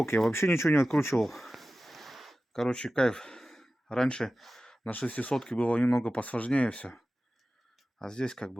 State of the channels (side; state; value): both; normal; correlation 0.95